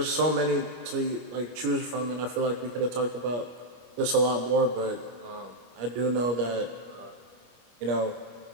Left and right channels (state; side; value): late; left; 25 ms